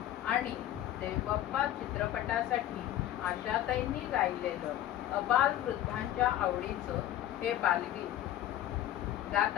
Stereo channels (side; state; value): right; quieter; 12.8 dB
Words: आणि देवबाप्पा चित्रपटासाठी आशाताईंनी गायलेलं अबाल वृद्धांच्या आवडीचं हे बालगीत गात